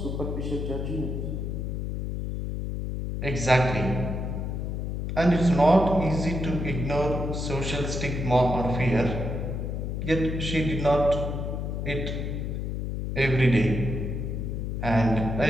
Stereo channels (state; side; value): noise; left; hum, 3 dB below the sound